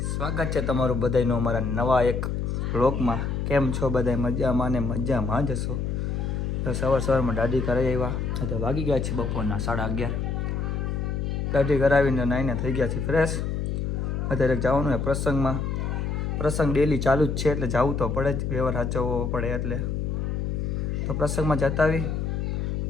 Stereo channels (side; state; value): left; noise; hum, 1 dB below the sound